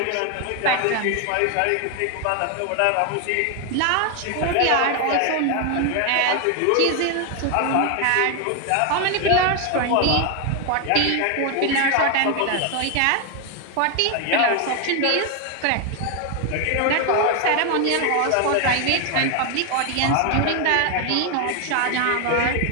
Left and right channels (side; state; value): both; different; correlation 0.01